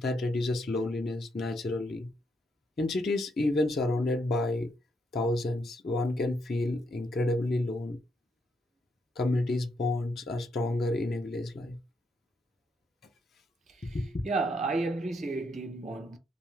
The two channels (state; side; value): normal; both; correlation 0.77